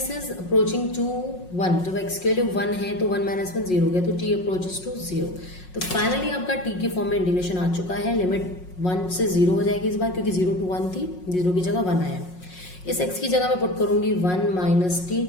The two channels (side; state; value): right; late; 5.5 ms